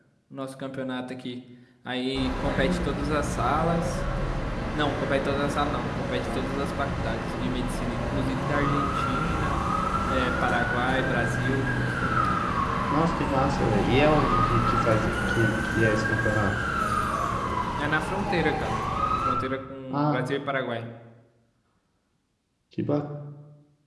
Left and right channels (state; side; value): identical; both; correlation 1.00